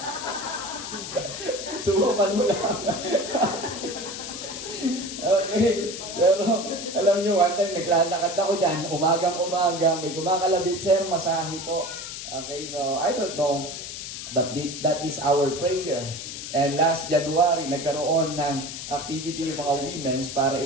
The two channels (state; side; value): noise; left; hiss, 8 dB below the sound